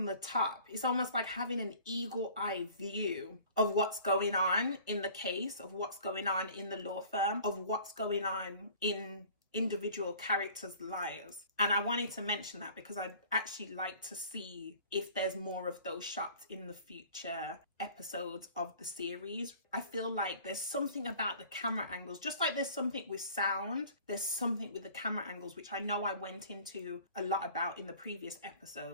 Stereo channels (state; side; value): inverted; both; correlation -0.48